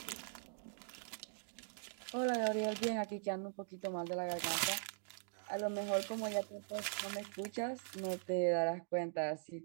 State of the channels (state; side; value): silent; left; digital silence